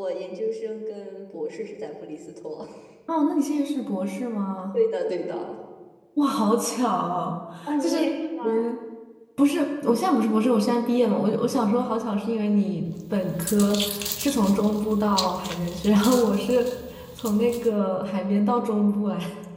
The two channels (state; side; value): identical; both; correlation 1.00